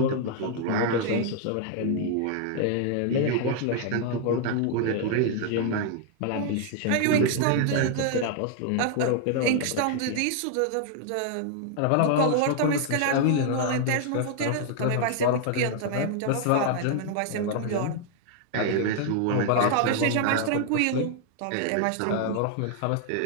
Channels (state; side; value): different; both; correlation 0.00